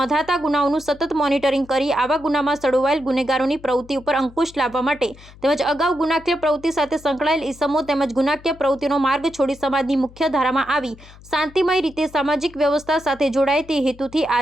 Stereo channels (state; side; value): noise; left; hum, 21 dB below the sound